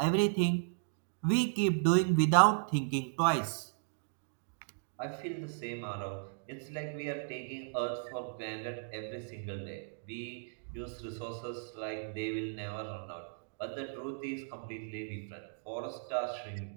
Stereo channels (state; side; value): silent; left; digital silence